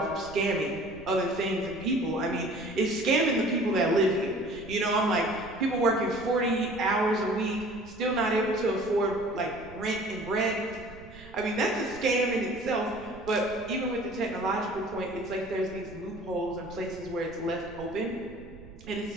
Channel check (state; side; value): noise; right; rumble, 19 dB below the sound